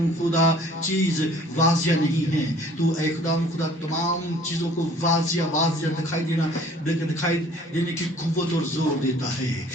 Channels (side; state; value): both; normal; correlation 0.52